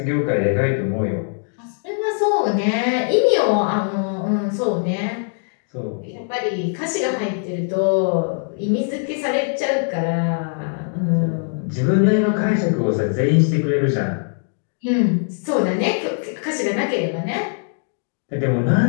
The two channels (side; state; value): right; silent; 56 dB below the other